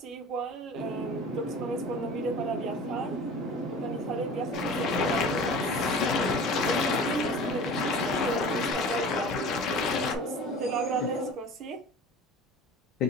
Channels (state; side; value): normal; both; correlation 0.40